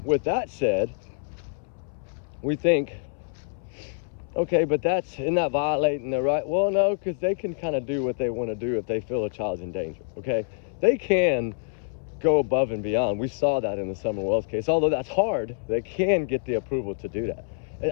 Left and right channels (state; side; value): silent; right; 61 dB below the other